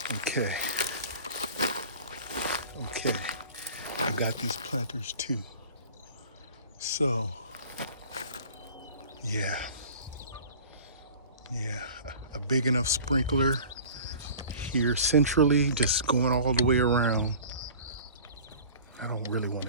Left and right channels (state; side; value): inverted; both; correlation -0.42